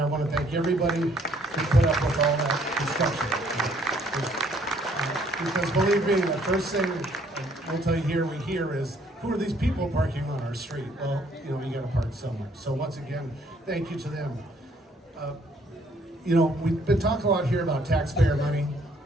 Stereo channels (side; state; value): both; normal; correlation 0.64